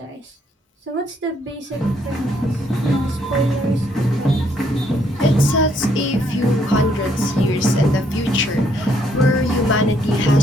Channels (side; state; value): both; normal; correlation 0.70